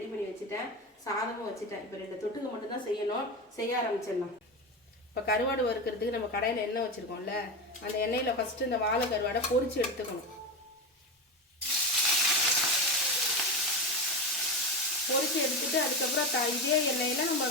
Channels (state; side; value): normal; both; correlation 0.18